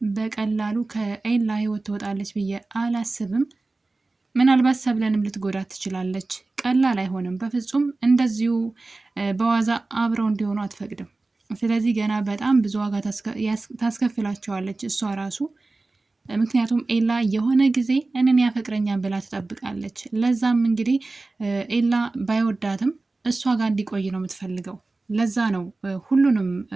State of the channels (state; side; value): quieter; left; 3.3 dB